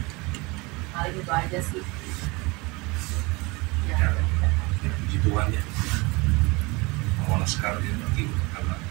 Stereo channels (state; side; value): quieter; left; 25.4 dB